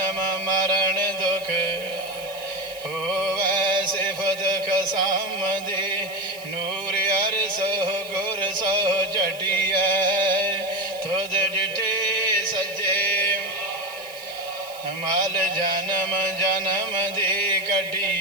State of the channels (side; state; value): right; noise; hiss, 18 dB below the sound